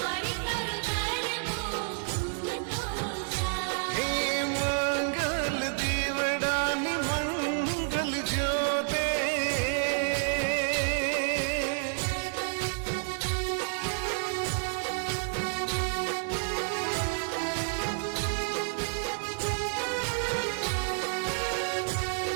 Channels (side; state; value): left; silent; 58 dB below the other